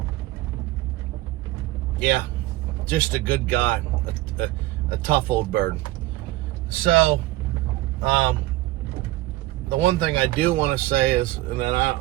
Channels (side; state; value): left; quieter; 17.6 dB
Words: Yeah, just a good guy, a tough old bird. So, the one thing I do want to say is, and then